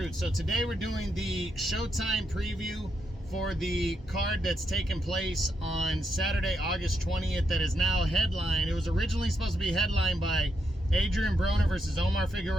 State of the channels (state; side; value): normal; both; correlation 0.81